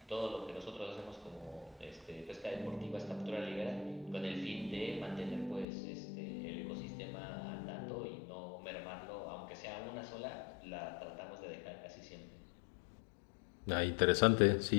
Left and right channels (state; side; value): drops out; right; at 5.7 s